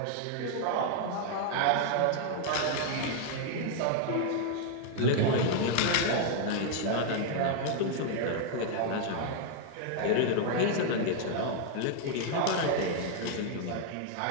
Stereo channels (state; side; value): different; both; correlation 0.00